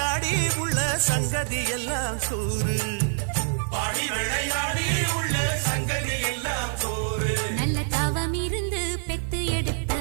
உள்ள சங்கதி எல்லாம் கூறு பாடி விளையாடி உள்ள சங்கதி எல்லாம் கூறு நல்ல தவம் இருந்து பெத்து எடுத்த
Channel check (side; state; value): left; silent; digital silence